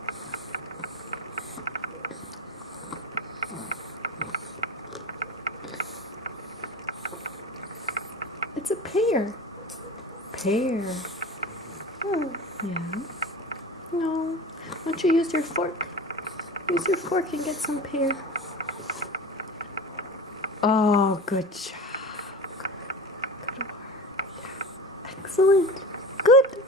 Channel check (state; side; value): normal; both; correlation 0.32